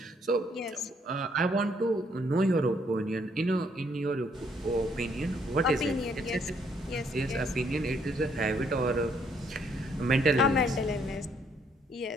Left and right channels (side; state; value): both; normal; correlation 0.69